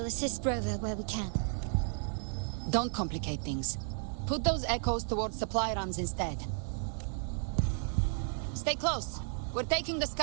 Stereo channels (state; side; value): silent; left; 55 dB below the other